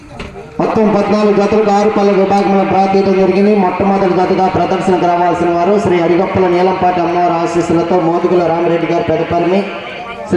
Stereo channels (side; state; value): both; identical; correlation 1.00